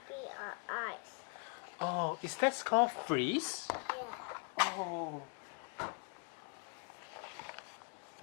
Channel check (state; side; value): quieter; right; 37.3 dB